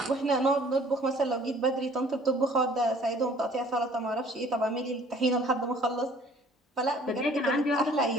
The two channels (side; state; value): both; normal; correlation 0.54